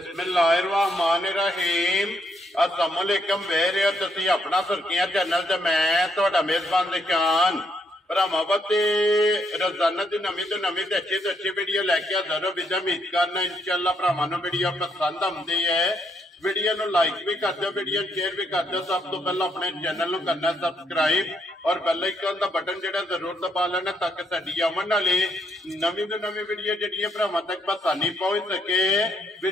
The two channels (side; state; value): both; normal; correlation 0.75